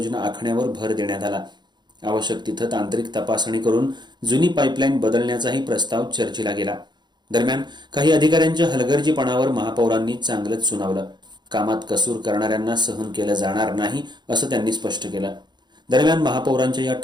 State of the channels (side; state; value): left; late; 0.21 ms